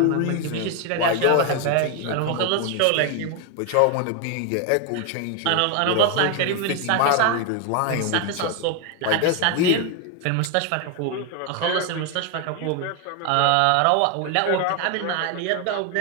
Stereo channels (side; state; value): both; different; correlation 0.01